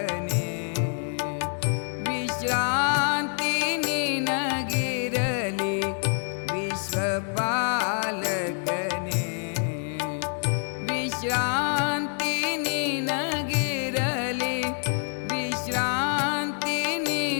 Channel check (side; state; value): right; silent; 57 dB below the other